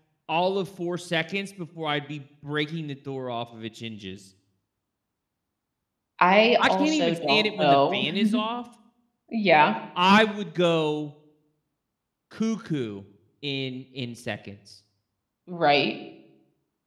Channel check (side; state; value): both; identical; correlation 1.00